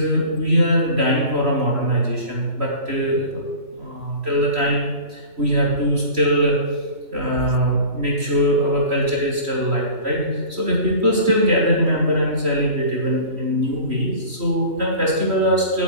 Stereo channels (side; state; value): left; late; 3.1 ms